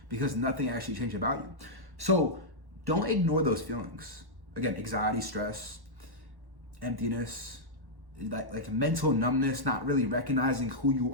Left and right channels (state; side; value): late; left; 1.1 ms